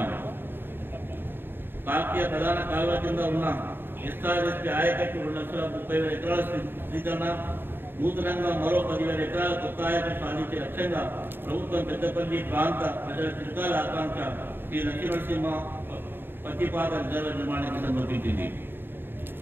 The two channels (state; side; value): late; left; 0.099 ms